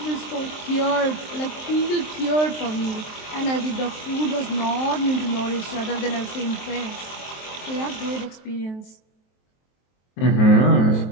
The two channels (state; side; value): late; right; 23 ms